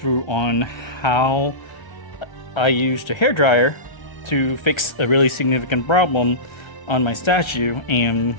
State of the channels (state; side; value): late; right; 1.3 ms